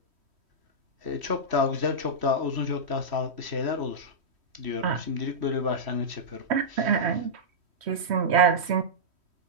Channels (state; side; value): late; left; 3.1 ms